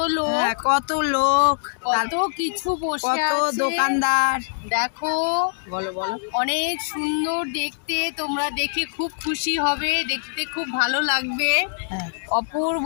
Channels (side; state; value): right; silent; digital silence